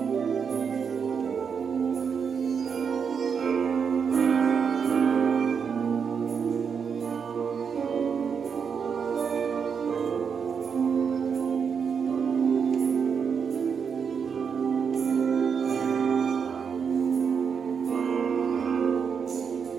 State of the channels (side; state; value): left; quieter; 6.5 dB